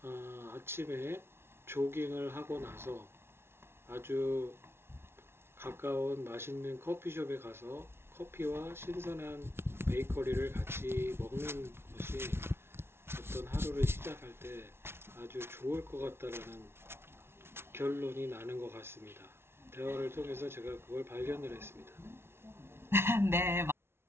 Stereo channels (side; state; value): left; late; 0.12 ms